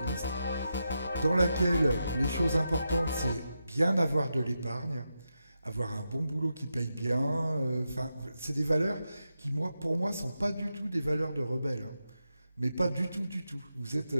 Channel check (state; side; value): inverted; both; correlation -0.88